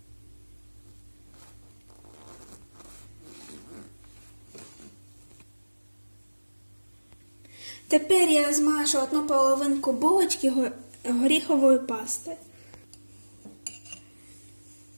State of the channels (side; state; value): both; inverted; correlation -1.00